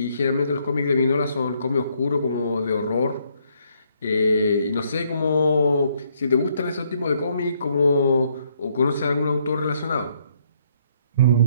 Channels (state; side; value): inverted; both; correlation -0.70